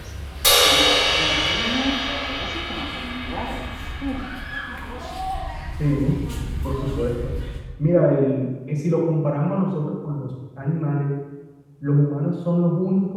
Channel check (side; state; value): both; identical; correlation 1.00